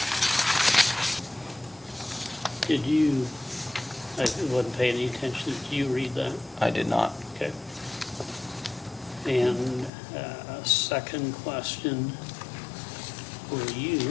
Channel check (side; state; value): right; drops out; at 9.9 s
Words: Did you, I wasn't paying any attention, did you read that? I did not. Okay. And second question for you